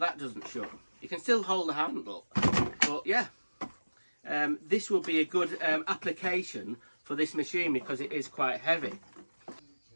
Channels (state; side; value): inverted; both; correlation -1.00